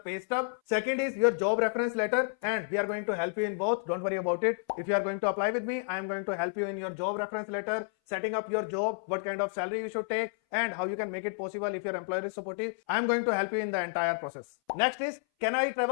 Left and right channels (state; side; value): silent; right; 57 dB below the other